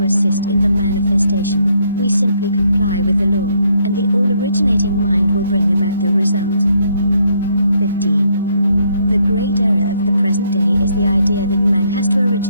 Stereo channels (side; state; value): both; inverted; correlation -0.71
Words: assist in the manifestation. We simply comply with the law, and the all-originating mind will bring about the result. 15. The great error of the present day is the idea that man has to